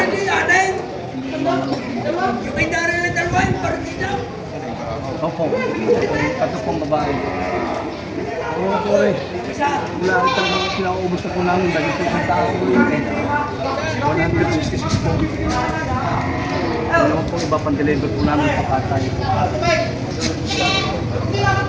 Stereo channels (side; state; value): both; identical; correlation 1.00